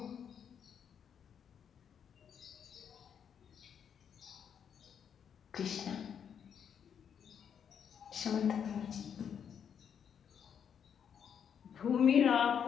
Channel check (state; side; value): quieter; right; 7.9 dB